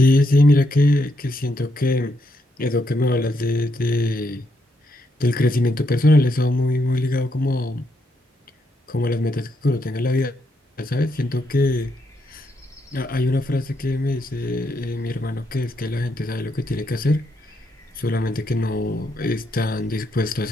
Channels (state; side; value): normal; both; correlation 0.78